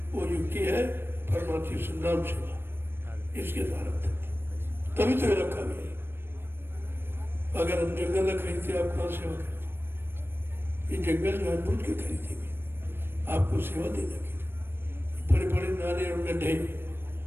वो युक्ति है परमार्थी संनाम सेवा, इसके द्वारा तभी तो रखा गया। अगर हम जंगल न खरीदते, आप कहाँ सेवा करते? ये जंगल जानबूझ के खरीदेंगे आपको सेवा देने के लिए। बड़े बड़े नाले और गड्ढे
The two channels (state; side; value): late; left; 0.10 ms